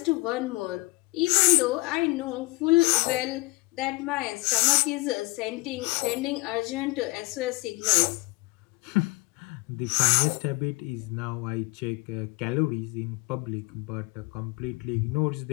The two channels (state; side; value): quieter; right; 24.7 dB